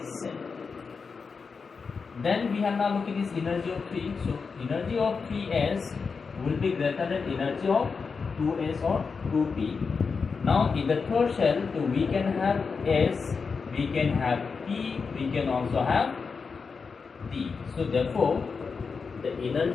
same. Then we have now look at this energy of 3. So energy of 3s will be greater than energy of 2s or 2p. Now in the third shell, so we can have s, we can have p, we can also have d. So therefore the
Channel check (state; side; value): quieter; right; 5.1 dB